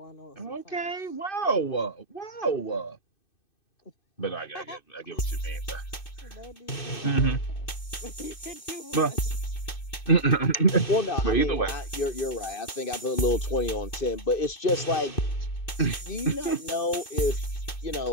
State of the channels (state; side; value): late; right; 2.6 ms